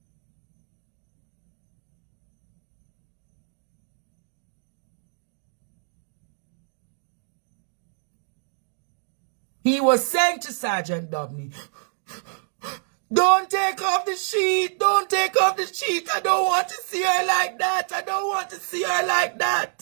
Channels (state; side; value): silent; left; digital silence